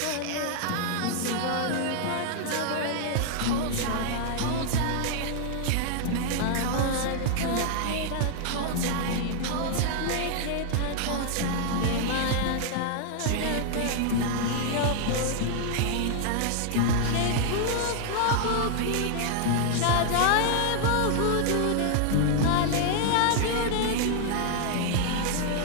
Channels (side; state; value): both; different; correlation 0.00